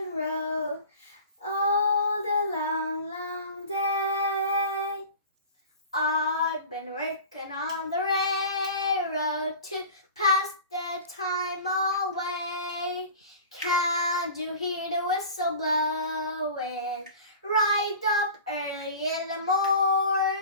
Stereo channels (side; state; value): both; inverted; correlation -0.39